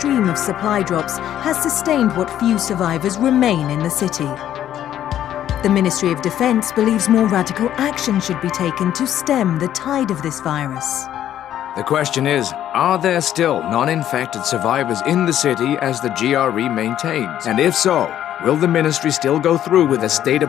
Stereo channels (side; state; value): right; quieter; 11.3 dB